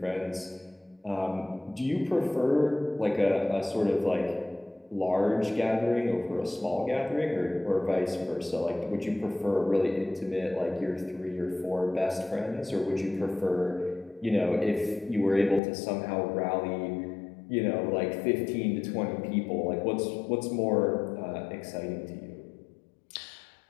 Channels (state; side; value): drops out; right; at 15.6 s